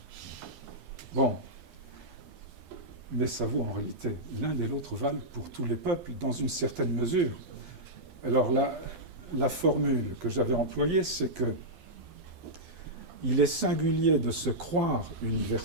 Bon. Mais ça vaut en réalité, l'un et l'autre valent pour tous les peuples, dans une certaine mesure. Alors la formule que j'avais employée, c'est que il est singulier de se croire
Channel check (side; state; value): left; late; 12 ms